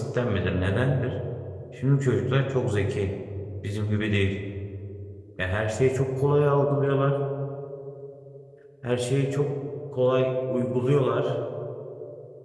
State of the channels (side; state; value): both; identical; correlation 1.00